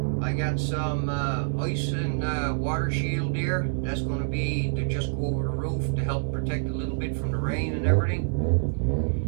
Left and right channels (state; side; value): silent; left; 60 dB below the other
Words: I got some ice and water shield here. That's going to be to just go over the roof to help protect a little bit from the rain and everything.